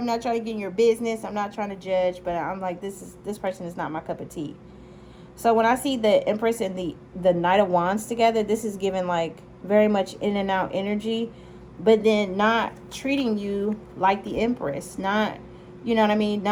not trying to get in your business. I'm not trying to judge, but I'm like, this person is not my cup of tea. So when I see the Empress and the Knight of Wands together, this is giving like very much in and out energy, but then not treating you like the Empress, not, you know what I mean,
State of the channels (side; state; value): both; identical; correlation 1.00